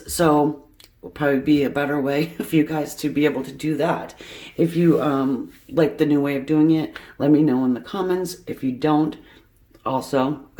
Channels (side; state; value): both; identical; correlation 1.00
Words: so will probably be a better way for you guys to be able to do that. If you like the new way of doing it, let me know in the comments. If you don't, also